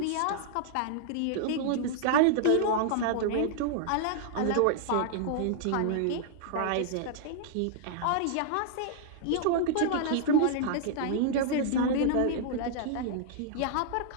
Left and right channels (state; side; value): different; both; correlation -0.01